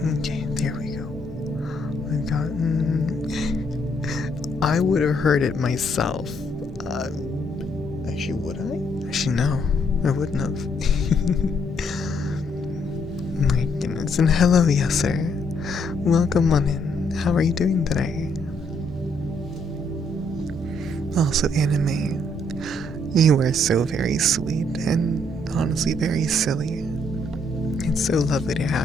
Okay, there we go. I've gotten... I would have heard it myself. Actually, would I? Actually, no. I wouldn't have. My goodness. And hello, yes, sir. Welcome on in. How are you doing today? Also, anime. You are so very sweet and honestly very silly. It's so lovely to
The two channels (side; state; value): both; normal; correlation 0.71